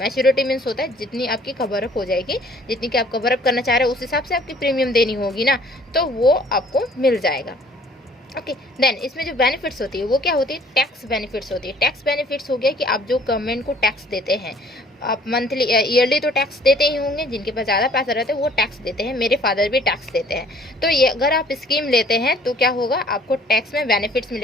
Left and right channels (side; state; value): both; normal; correlation 0.56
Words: मीन्स होता है जितनी आपकी कवर अप हो जाएगी, जितनी की आप कवर अप करना चाह रहे हो उस हिसाब से आपकी प्रीमियम देनी होगी ना, तो वो आपको मिल जाएगा। ओके, देन इसमें जो बेनिफिट्स होती है वो क्या होती है, टैक्स बेनिफिट्स होती है। टैक्स बेनिफिट्स हो गया कि आप जो गवर्नमेंट को टैक्स देते हैं, आप मंथली ईयरली तो टैक्स देते ही होंगे, जिनके पास ज़्यादा पैसा रहता है वो टैक्स देते हैं। मेरे फादर भी टैक्स देते हैं। तो ये अगर आप स्कीम लेते हैं तो क्या होगा, आपको टैक्स में बेनिफिट्स